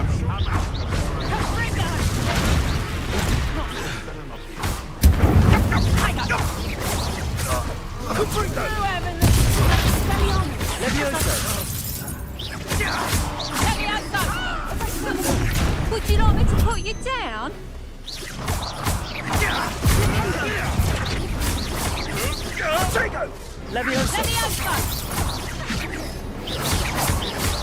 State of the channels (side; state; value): both; identical; correlation 1.00